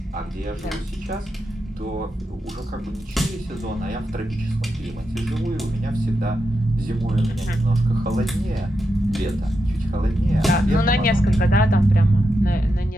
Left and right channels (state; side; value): normal; both; correlation 0.86